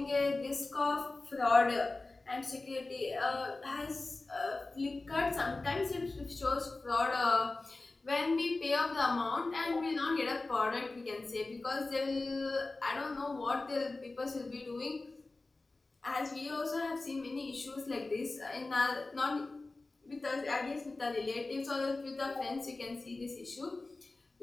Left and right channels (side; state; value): right; quieter; 3.3 dB